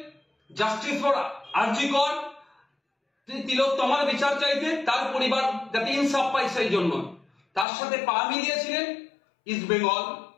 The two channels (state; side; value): drops out; right; at 7.7 s